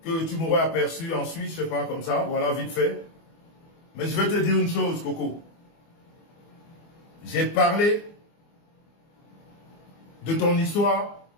que tu m'aurais aperçu en Suisse, je ne sais pas, comme ça, voilà, vite fait. Mais je vais te dire une chose, Coco. J'ai parlé de ton histoire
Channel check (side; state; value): right; late; 24 ms